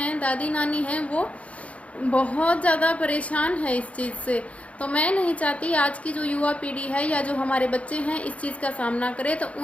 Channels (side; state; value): right; late; 0.064 ms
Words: दादी नानी हैं, वो बहुत ज़्यादा परेशान है इस चीज़ से। तो मैं नहीं चाहती आज की जो युवा पीढ़ी है या जो हमारे बच्चे हैं इस चीज़ का सामना करें, तो